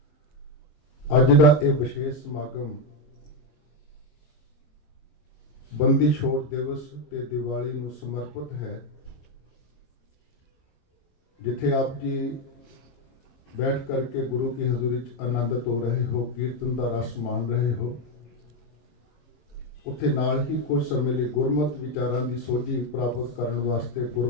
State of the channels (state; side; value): late; right; 22 ms